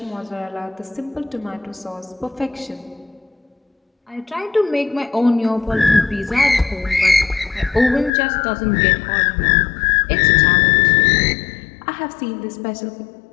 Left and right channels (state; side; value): drops out; right; at 8.1 s